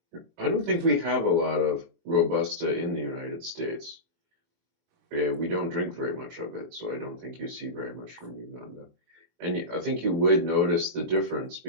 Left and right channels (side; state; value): left; late; 23 ms